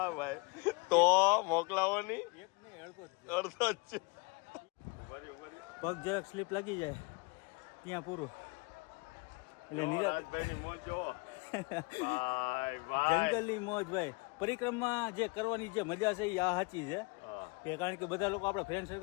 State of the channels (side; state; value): right; quieter; 28.9 dB